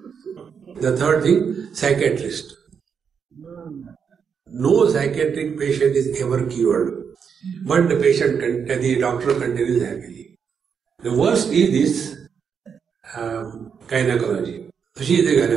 The third thing, psychiatrist. No psychiatric patient is ever cured, but the doctor continues happily. The worst is this gynecology. She is a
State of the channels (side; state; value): left; quieter; 6.7 dB